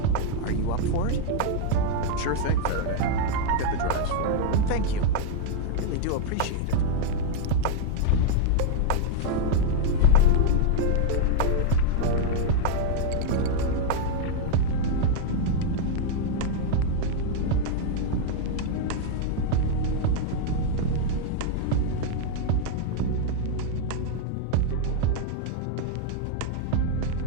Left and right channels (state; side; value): different; both; correlation -0.01